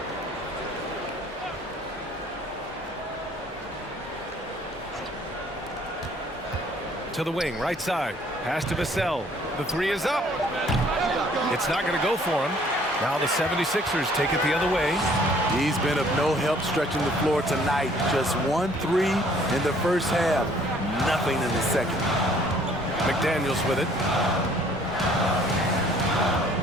To the wing, right side. Pass to Vassell. The three is up. It's not going to go for him. Now the 76ers take it the other way. He's been of no help stretching the floor tonight. Just 1-3 in the first half. Nothing in the second. McDaniels with it.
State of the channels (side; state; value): both; normal; correlation 0.59